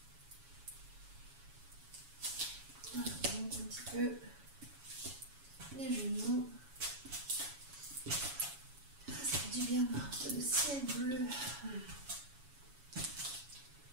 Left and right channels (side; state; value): left; late; 7.1 ms